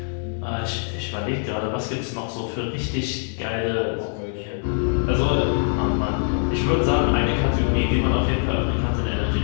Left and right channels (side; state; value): right; silent; digital silence